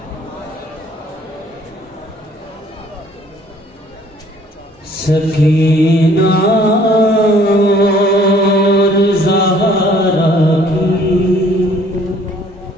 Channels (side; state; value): both; normal; correlation 0.58